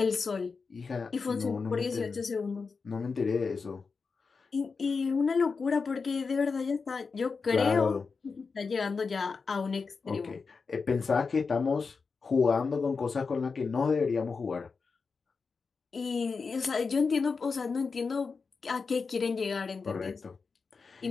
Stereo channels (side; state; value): right; quieter; 4.9 dB